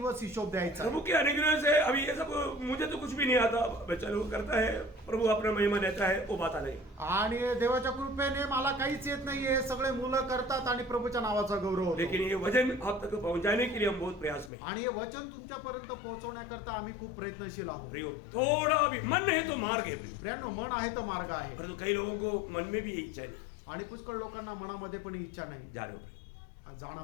हिशोब द्यायचा प्रभु के अनुग्रह से अभी ये सब मुझे तो कुछ भी नहीं आता, बच्चा लोग करता है, प्रभु अपना महिमा देता है, वो बात आ नहीं। आणि देवाच्या कृपेने मला काहीच येत नाहीये, सगळे मुलं करतात आणि प्रभूच्या नावाचा गौरव होतो. लेकिन ये वजन आप तक पहुंचाने के लिए हम बहुत प्रयास में हैं। आणि हे वचन तुमच्यापर्यंत पोहोचवण्याकरता आम्ही खूप प्रयत्नशील आहोत. प्रियो, थोड़ा भी मन है तो मार्ग है प्रियो। प्रियांनो, मन आहे तर मार्ग आहे. परंतु कई लोगों को मन में भी ये इच्छा नहीं, आणि पुष्कळ लोकांना मनामध्ये पण इच्छा नाही. जानो जाणा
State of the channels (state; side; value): drops out; right; at 14.5 s